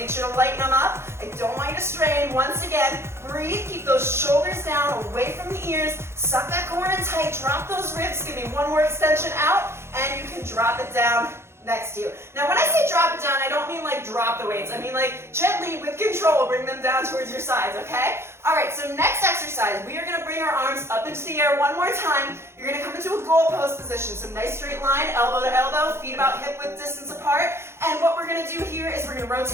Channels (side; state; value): left; late; 0.12 ms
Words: sure to lighten them up. I don't want you to strain. Once again, breathe, keep those shoulders down, away from the ears, suck that core in tight, drop those ribs, give me one more extension out, and you can drop it down next to you. Now, when I say drop it down, I don't mean like drop the weights. I mean like gently, with control, bring them down towards your sides, okay? All right, so next exercise, we are going to bring our arms up into the air one more time. You're going to come into a goal pose position. So nice straight line, elbow to elbow, feet about hip width distance apart. And what we're going to do here is we're going to